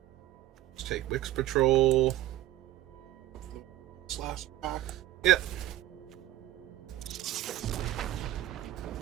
Let's take Wix Patrol. Slash pack. Yep.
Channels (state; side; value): quieter; left; 13.8 dB